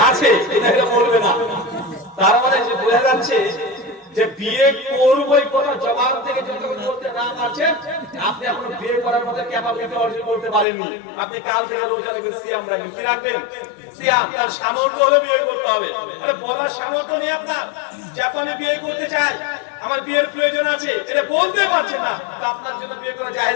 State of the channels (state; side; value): drops out; right; at 10.7 s